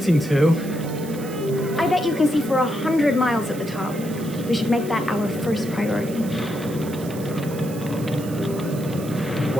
to. I bet you can see for 100 miles at the top. We should make that our first priority.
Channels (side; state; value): right; noise; hiss, 16 dB below the sound